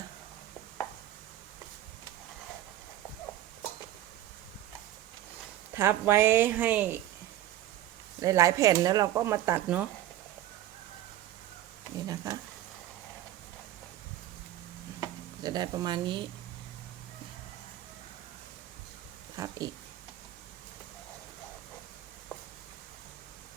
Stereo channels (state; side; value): quieter; left; 13.3 dB